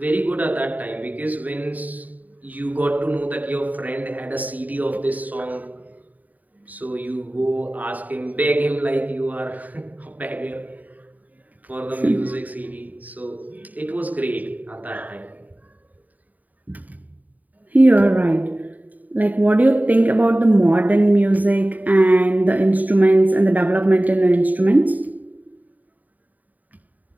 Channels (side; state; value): left; late; 0.077 ms